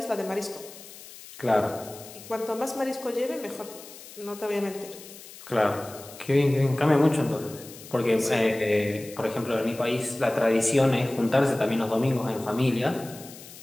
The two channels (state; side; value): noise; left; hiss, 17 dB below the sound